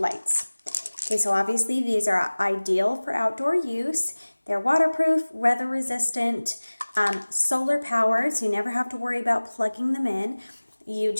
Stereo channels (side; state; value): both; inverted; correlation -1.00